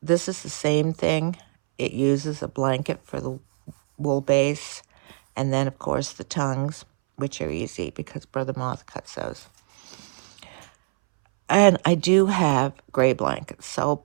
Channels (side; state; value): left; silent; 63 dB below the other